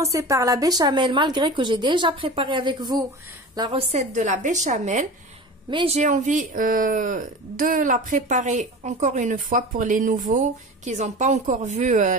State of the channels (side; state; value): both; normal; correlation 0.33